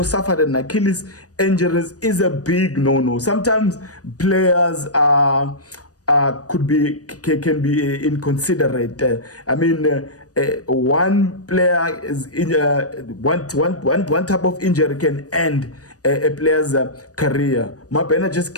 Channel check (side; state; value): right; late; 0.67 ms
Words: suffered an Achilles injuries, is a big no-no. Sometimes players can be inconsiderate. One player is one type of injury can end a player's career. Mabena just